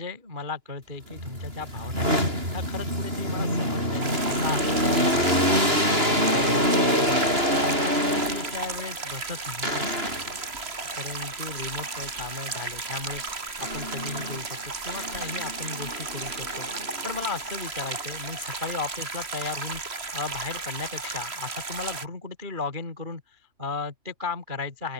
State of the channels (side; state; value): left; late; 3.0 ms